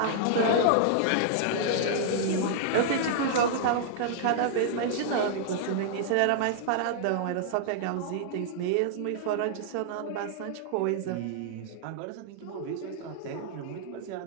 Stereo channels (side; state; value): both; different; correlation -0.01